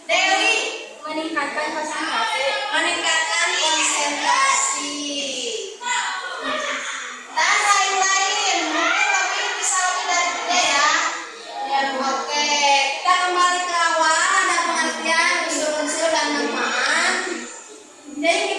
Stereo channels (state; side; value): identical; both; correlation 1.00